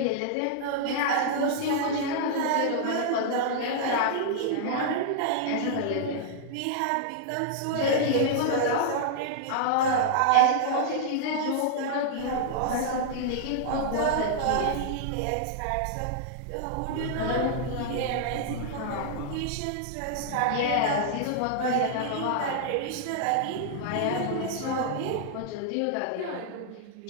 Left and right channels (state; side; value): different; both; correlation -0.01